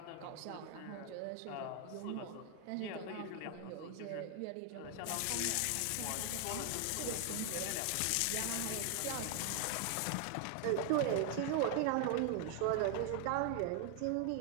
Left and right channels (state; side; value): different; both; correlation 0.00